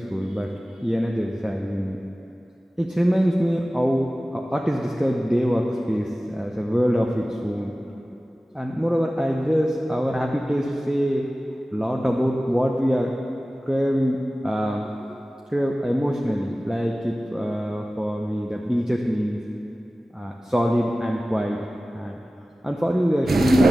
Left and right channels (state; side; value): normal; both; correlation 0.96